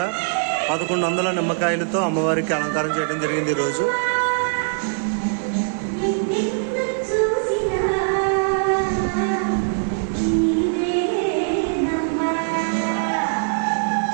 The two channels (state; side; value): silent; left; 64 dB below the other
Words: 1100 నిమ్మకాయలతో అమ్మవారికి అలంకారం చేయడం జరిగింది. ఈరోజు